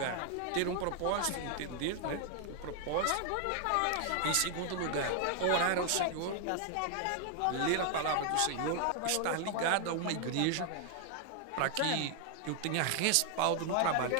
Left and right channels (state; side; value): different; both; correlation 0.00